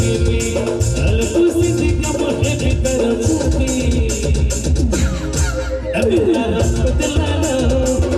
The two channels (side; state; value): both; identical; correlation 1.00